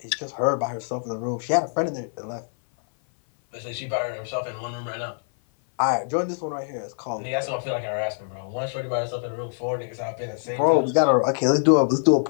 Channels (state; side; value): silent; right; 57 dB below the other